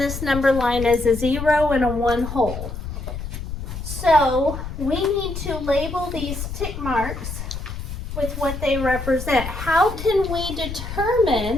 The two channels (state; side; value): noise; left; rumble, 7 dB below the sound